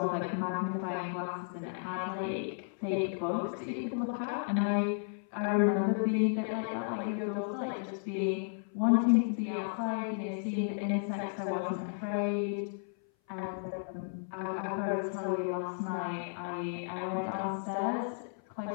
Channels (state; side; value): silent; right; 55 dB below the other